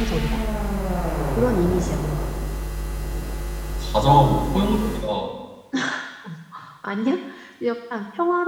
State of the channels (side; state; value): both; identical; correlation 1.00